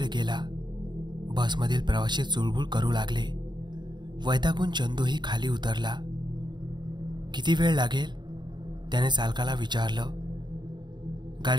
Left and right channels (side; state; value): left; late; 0.21 ms